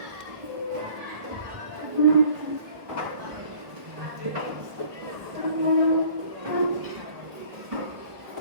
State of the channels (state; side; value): late; left; 1.3 ms